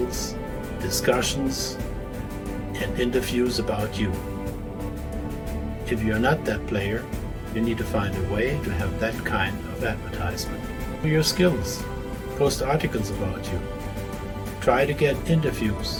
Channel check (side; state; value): both; identical; correlation 1.00